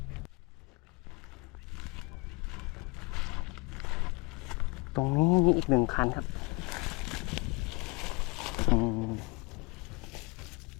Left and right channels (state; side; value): quieter; right; 27.2 dB